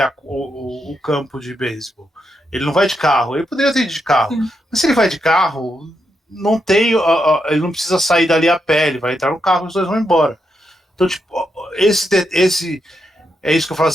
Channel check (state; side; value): normal; both; correlation 0.82